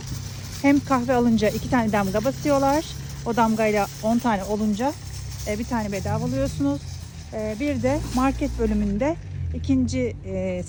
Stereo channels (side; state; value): both; identical; correlation 1.00